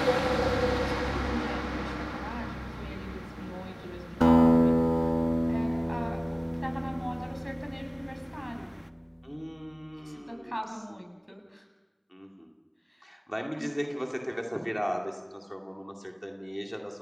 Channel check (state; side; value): identical; both; correlation 1.00